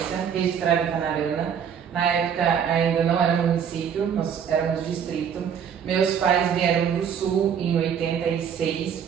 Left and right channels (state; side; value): quieter; left; 7.9 dB